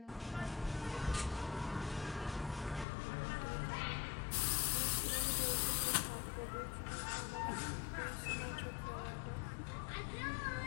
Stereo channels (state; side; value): drops out; right; at 2.9 s